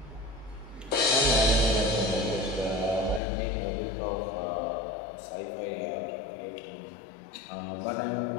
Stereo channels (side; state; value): right; drops out; at 3.2 s